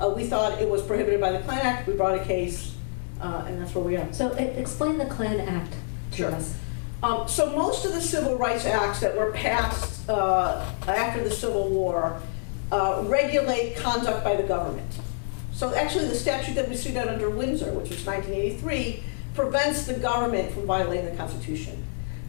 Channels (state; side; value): silent; right; digital silence